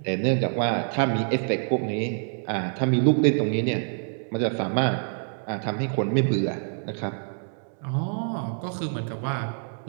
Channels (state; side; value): silent; left; 61 dB below the other